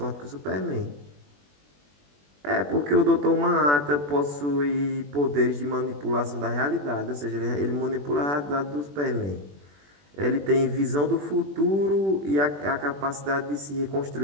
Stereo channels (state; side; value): late; left; 21 ms